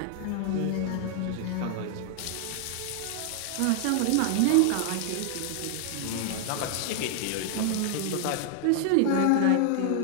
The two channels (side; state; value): both; different; correlation 0.00